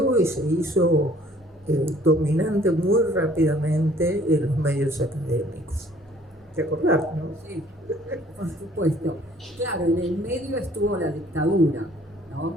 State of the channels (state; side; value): normal; both; correlation 0.57